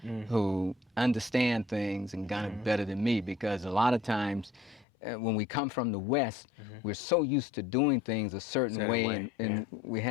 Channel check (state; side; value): drops out; right; at 4.9 s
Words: who understand things and Ghana better than me, because a lot of times when we come from the West, we're so used to doing things a certain way, and we